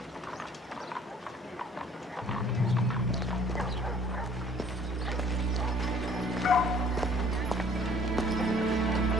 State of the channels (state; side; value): normal; both; correlation 0.55